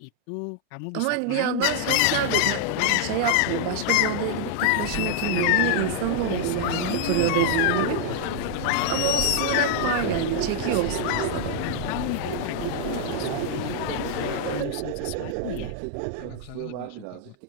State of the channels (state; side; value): different; both; correlation 0.00